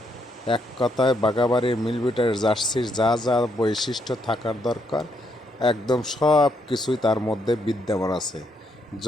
এক কথায় বাগাবাড়ির মিলবিটার জার্সির যা যা বৈশিষ্ট্য থাকার দরকার একদম সব কিছুই তার মধ্যে বিদ্যমান আছে।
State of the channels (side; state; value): both; normal; correlation 0.76